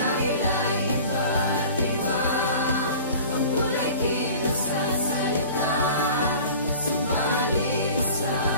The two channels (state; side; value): inverted; both; correlation -0.42